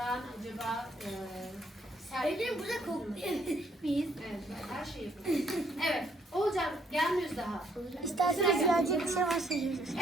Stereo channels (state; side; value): normal; both; correlation 0.68